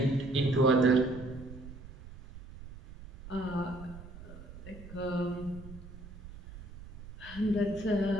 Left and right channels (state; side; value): noise; right; rumble, 15 dB below the sound